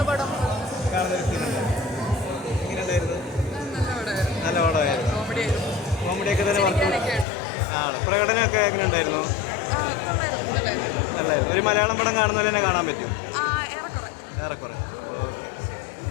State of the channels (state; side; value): drops out; right; at 7.2 s